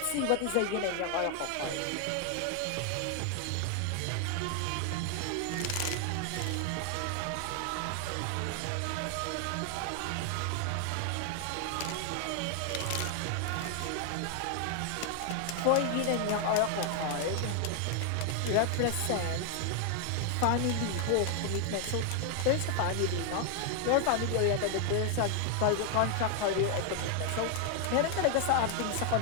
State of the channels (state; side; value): different; both; correlation 0.00